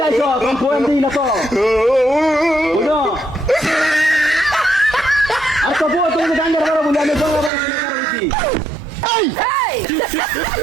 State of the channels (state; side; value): drops out; left; at 7.5 s